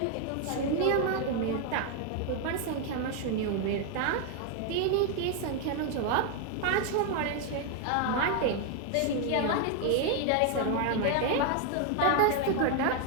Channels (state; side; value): different; both; correlation 0.00